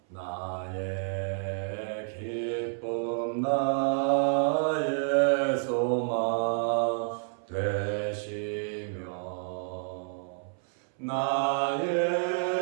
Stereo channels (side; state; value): left; silent; 58 dB below the other